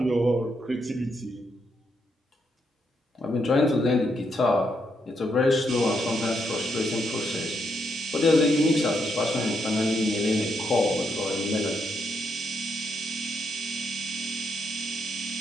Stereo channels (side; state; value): both; normal; correlation 0.78